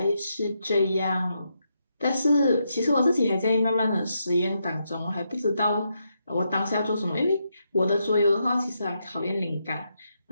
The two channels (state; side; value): inverted; both; correlation -0.81